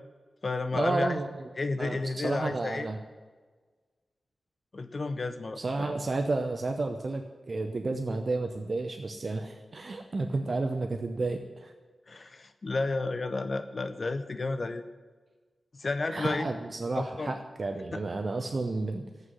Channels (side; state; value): both; normal; correlation 0.93